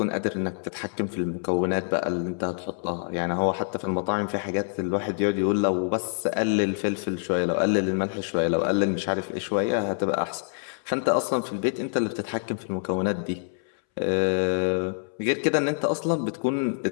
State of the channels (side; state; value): right; silent; 61 dB below the other